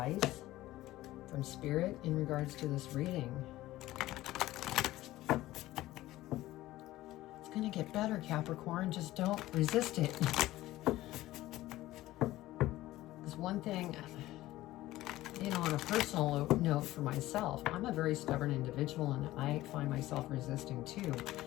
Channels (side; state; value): right; quieter; 16.3 dB